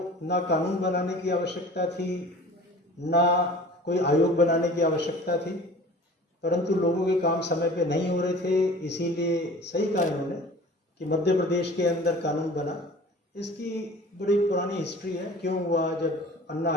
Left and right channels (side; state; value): both; normal; correlation 0.43